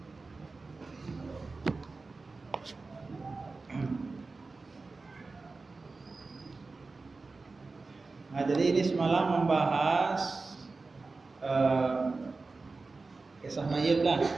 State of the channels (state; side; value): quieter; left; 3.8 dB